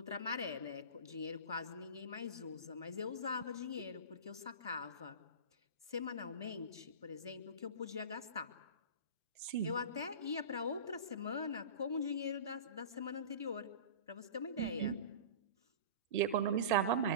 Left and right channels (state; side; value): inverted; both; correlation -0.32